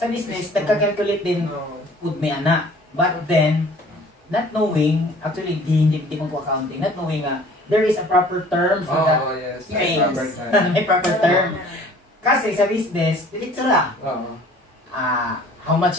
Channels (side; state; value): both; normal; correlation 0.51